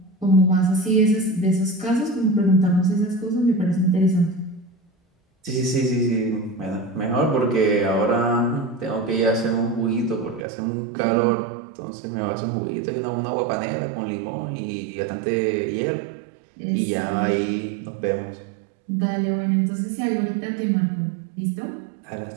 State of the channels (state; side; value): drops out; left; at 10.5 s